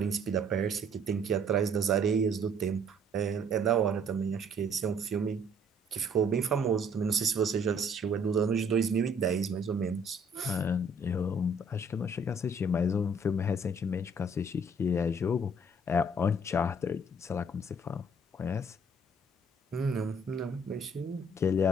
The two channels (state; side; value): normal; both; correlation 0.60